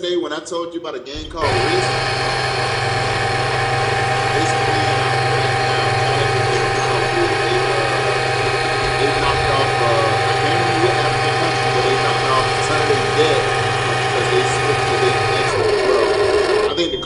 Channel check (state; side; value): identical; both; correlation 1.00